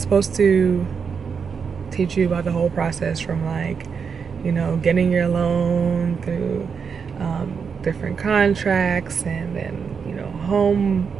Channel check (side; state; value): left; quieter; 6.1 dB